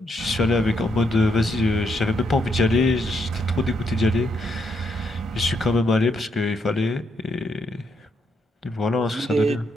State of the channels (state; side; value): normal; both; correlation 0.77